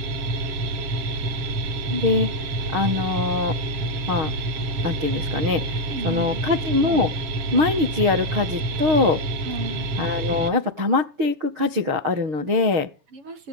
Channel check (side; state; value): left; late; 6.5 ms